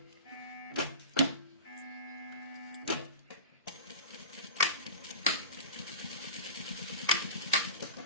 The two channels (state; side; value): inverted; both; correlation -0.31